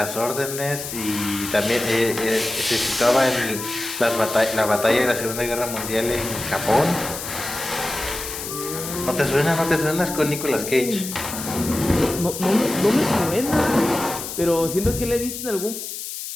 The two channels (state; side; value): noise; left; hiss, 8 dB below the sound